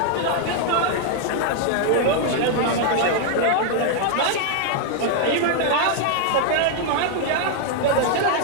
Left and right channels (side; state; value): both; different; correlation 0.00